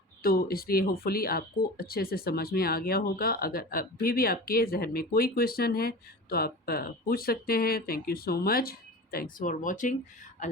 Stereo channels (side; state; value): both; normal; correlation 0.33